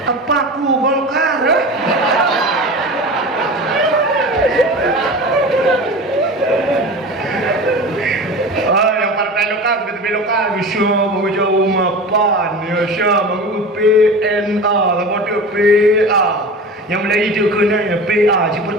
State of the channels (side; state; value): both; normal; correlation 0.33